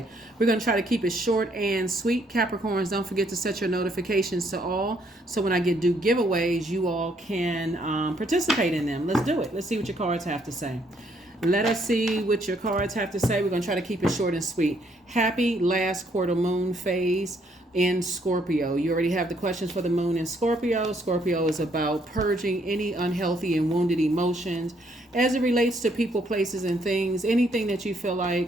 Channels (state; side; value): normal; both; correlation 0.70